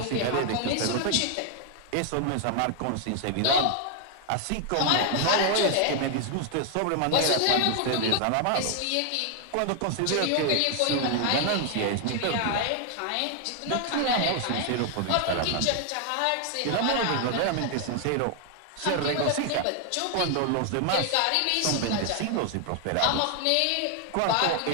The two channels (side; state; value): both; different; correlation 0.00